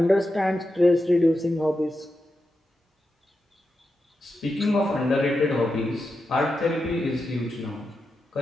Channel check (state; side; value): normal; both; correlation 0.88